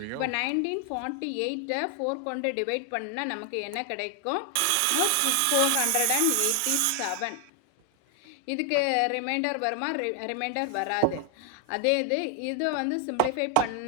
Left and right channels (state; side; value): different; both; correlation 0.00